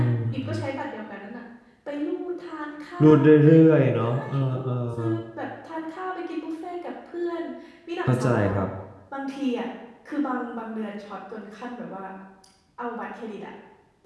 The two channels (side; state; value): both; identical; correlation 1.00